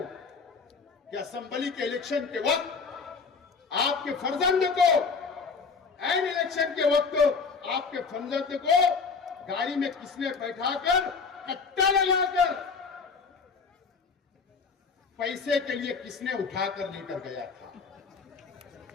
कि असेंबली के इलेक्शन के वक्त आपके फर्जंद को, एन इलेक्शन के वक्त आपके फर्जंद को गाड़ी में किसने बैठाकर, कट्टा लगाकर पैसे के लिए किसने उठाकर लेकर गया था?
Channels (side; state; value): right; quieter; 5.0 dB